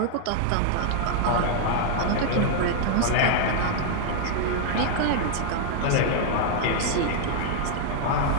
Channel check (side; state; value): both; different; correlation 0.00